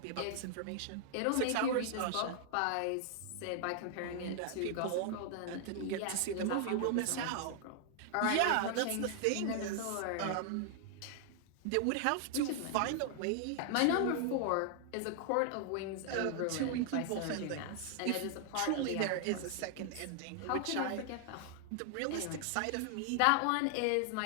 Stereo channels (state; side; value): different; both; correlation 0.00